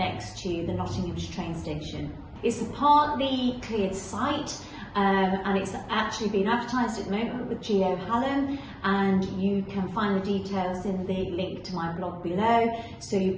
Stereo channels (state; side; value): identical; both; correlation 1.00